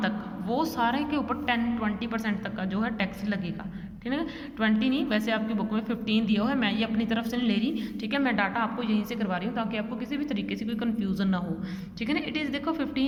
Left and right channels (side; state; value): both; identical; correlation 1.00